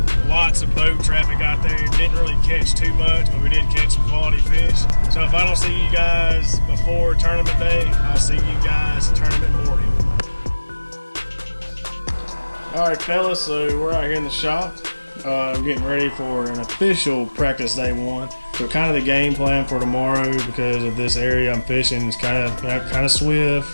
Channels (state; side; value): inverted; both; correlation -1.00